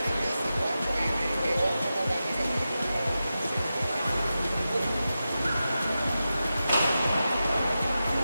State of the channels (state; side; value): inverted; both; correlation -0.92